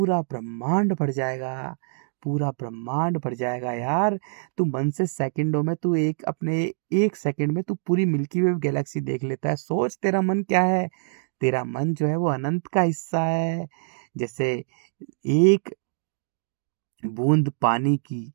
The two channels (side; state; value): left; silent; digital silence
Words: ब्रह्मांड भर जाएगा, पूरा ब्रह्मांड भर जाएगा यार। तू मन से सेकंडों में, तू एक अपने 1 सेकंड में तू पूरी मिल्की वे गैलेक्सी देख लेता है। सोच तेरा मन क्या है। तेरा मन जो है वो अनंत का हिस्सा है। जैसे एक बूंद पानी की,